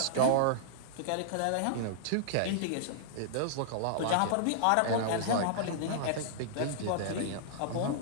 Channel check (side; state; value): both; different; correlation -0.02